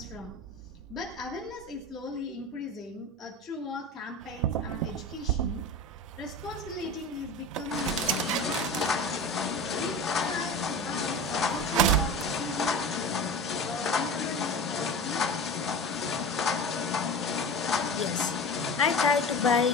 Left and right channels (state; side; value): normal; both; correlation 0.32